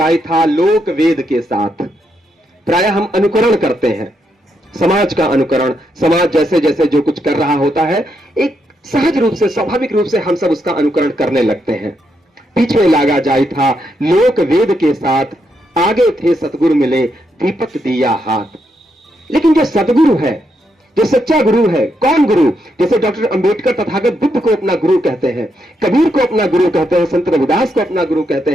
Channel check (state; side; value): normal; both; correlation 0.80